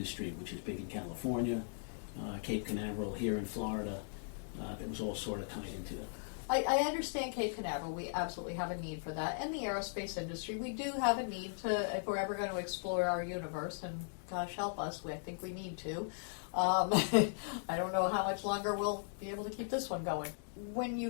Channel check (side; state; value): right; silent; digital silence